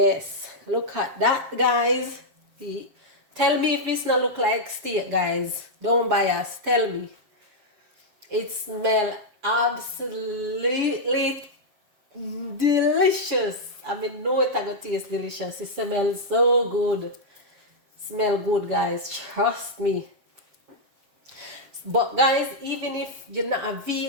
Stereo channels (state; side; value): late; left; 7.5 ms